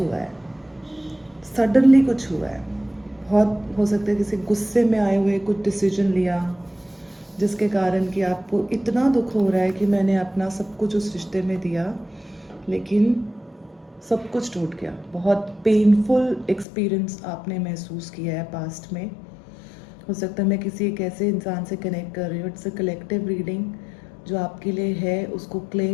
है, सडनली कुछ हुआ है। बहुत हो सकता है किसी गुस्से में आए हुए कुछ डिसीजन लिया, जिसके कारण कि आपको इतना दुख हो रहा है कि मैंने अपना सब कुछ उस रिश्ते में दिया, लेकिन सब कुछ टूट गया। बहुत पेनफुल एक्सपीरियंस आपने महसूस किया है पास्ट में। हो सकता है मैं किसी एक ऐसे इंसान से कनेक्ट कर रही हूँ। It's a collective reading. जो आपके लिए है उसको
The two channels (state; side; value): drops out; right; at 16.7 s